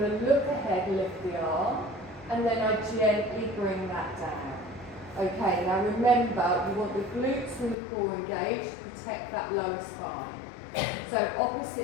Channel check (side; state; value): right; drops out; at 7.8 s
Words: look ahead, lift the arm, and then I gently bring that down. Okay, now remember, you want the glutes and the core engaged to protect that lower spine. So